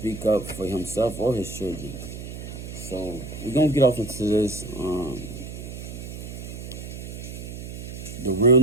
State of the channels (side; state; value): right; noise; hum, 9 dB below the sound